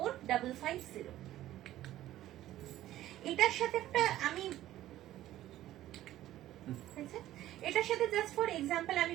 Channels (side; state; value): left; quieter; 14.0 dB